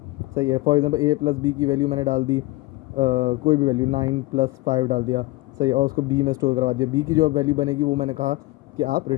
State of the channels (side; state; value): right; quieter; 20.8 dB